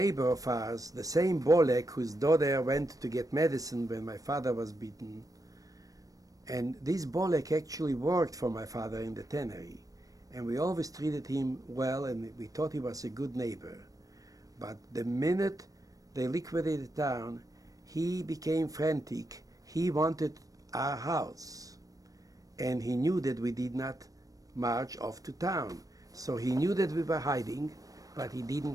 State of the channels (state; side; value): late; left; 0.17 ms